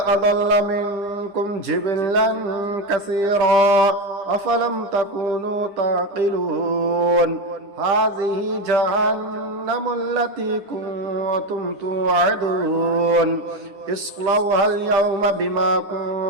منكم جبلا كثيرا أفلم تكونوا تعقلون هذه جهنم التي كنتم توعدون اصلوها اليوم بما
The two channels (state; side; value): late; left; 10 ms